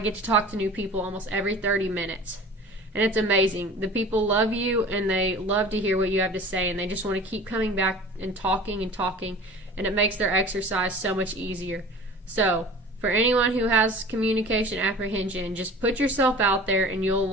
to talk to new people almost every 30 minutes. And it's amazing. The people love you, and they love to hear what you have to say, and they just want to keep coming back and talking, and it makes their exercise so much easier. So, for anyone who has communication apprehension, just put yourself out there and you'll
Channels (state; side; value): normal; both; correlation 0.41